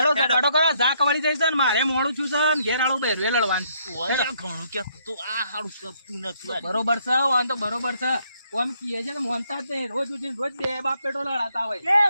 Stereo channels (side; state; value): both; inverted; correlation -0.71